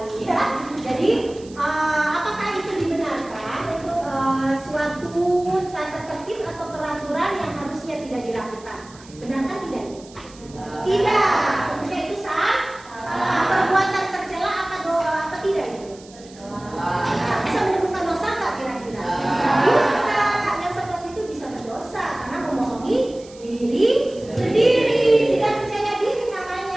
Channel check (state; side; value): noise; right; hiss, 23 dB below the sound